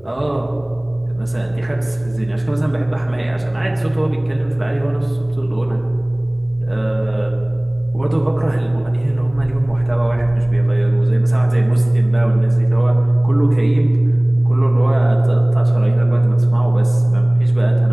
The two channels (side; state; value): left; noise; rumble, 29 dB below the sound